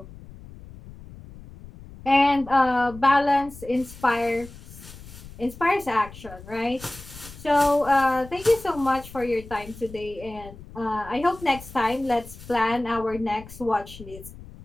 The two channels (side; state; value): left; noise; rumble, 17 dB below the sound